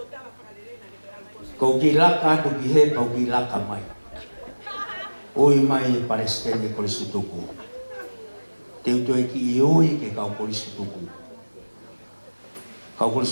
Kau gilaka tu gihe kau gilaka mai. Oi mai Palestina polisi tuku. Teu tu ki oi ke kau polisi tuku. Kau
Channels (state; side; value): inverted; both; correlation -1.00